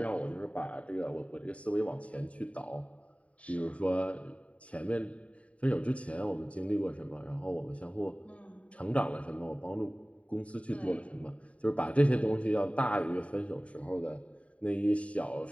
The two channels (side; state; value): right; late; 0.065 ms